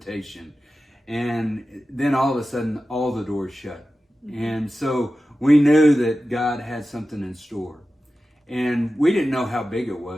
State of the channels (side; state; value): both; normal; correlation 0.94